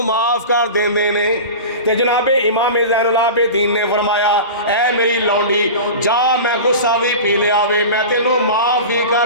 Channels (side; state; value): both; inverted; correlation -0.31